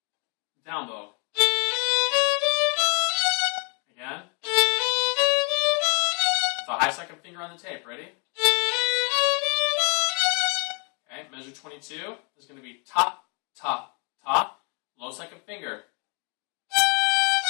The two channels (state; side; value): quieter; right; 35.2 dB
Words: Down bow. Again. With a high second finger on the tape. Ready? Okay, measure 22 is going to be ta, ta, ta. Low second finger.